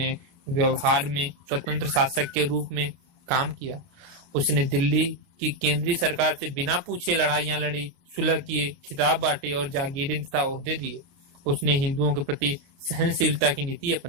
व्यवहार में स्वतंत्र शासक के रूप में काम किया। उसने दिल्ली की केंद्रीय सरकार से बिना पूछे लड़ाइयां लड़ी, सुलह किए, खिताब बांटे और जागीरें तथा ओहदे दिए। उसने हिंदुओं के प्रति सहनशीलता की नीति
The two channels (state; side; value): late; left; 29 ms